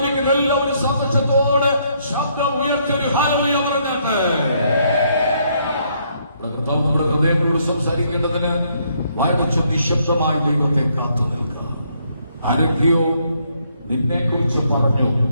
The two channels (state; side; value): inverted; both; correlation -0.71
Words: എല്ലാവരും സന്തോഷത്തോടെ ശബ്ദം ഉയർത്തിയൊരു ഹല്ലേലൂയ പറഞ്ഞാട്ടെ. നമ്മുടെ ഹൃദയങ്ങളോട് സംസാരിക്കേണ്ടതിന് വായിച്ച നിശബ്ദമായി ദൈവത്തെ കാത്തു നിൽക്കുക. ആരൊക്കെയോ നിന്നെ കുറിച്ച് പറഞ്ഞു